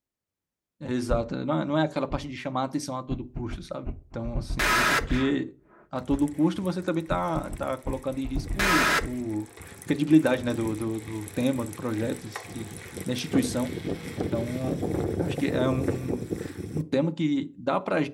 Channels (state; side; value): identical; both; correlation 1.00